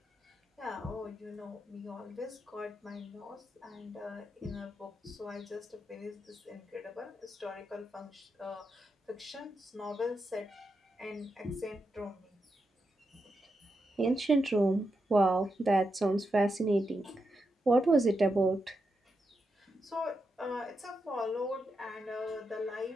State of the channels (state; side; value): normal; both; correlation 0.85